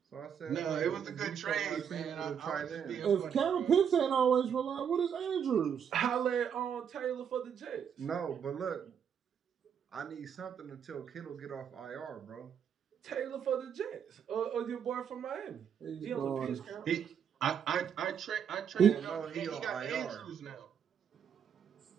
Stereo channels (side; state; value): left; quieter; 7.9 dB